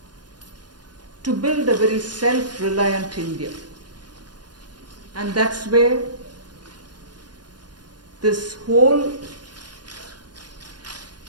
to build a very self-reliant India. And that's where this whole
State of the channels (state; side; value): late; left; 0.70 ms